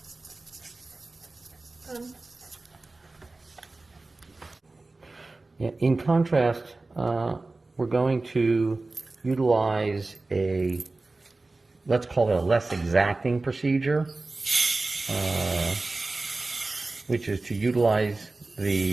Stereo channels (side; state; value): left; quieter; 3.3 dB